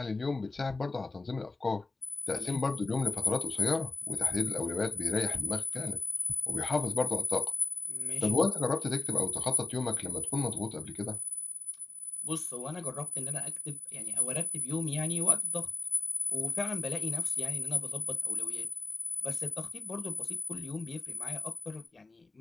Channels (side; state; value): right; quieter; 3.6 dB